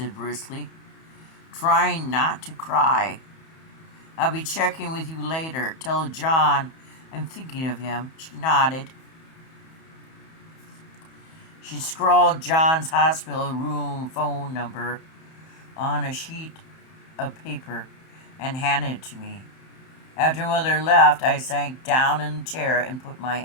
briskly, trying not to cry. I'll be checking with you later. Tell John I'm thinking of him. She nodded. She scrawled John's hospital room phone number on a sheet of paper and handed it to me. After Mother left, I sank down in the chair and put my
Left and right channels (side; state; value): right; late; 31 ms